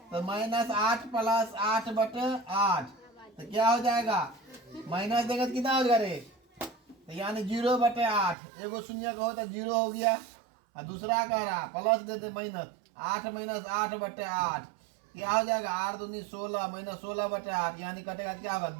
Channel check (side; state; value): left; drops out; at 8.3 s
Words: तो -8 + 8/8 तो क्या हो जाएगा? माइनस देगा तो कितना हो जाएगा रे? तो यानी 0/8। एगो शून्य का हो तो 0 हो गया, और दूसरा कह रहा प्लस देते -8 - 8/8 क्या हो जाएगा? 8 दूनी 16 -16/8 यानी कटेगा क्या होगा?